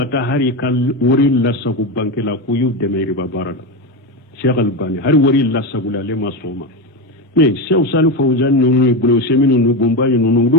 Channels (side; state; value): both; normal; correlation 0.15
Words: taa hari ka wari lasago banki la k'u y'u dɛmɛ riba baara la Sheikh Albani hari wari lasago la ale ma sɔn o ma mais Sheikh Salih Fawzan ninnu ye Bolo Usmane ninnu Bumba ninnu